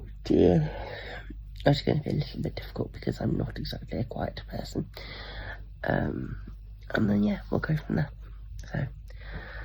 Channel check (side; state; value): both; identical; correlation 1.00